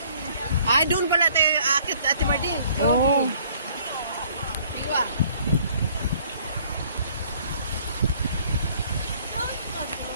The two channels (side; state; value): both; inverted; correlation -0.59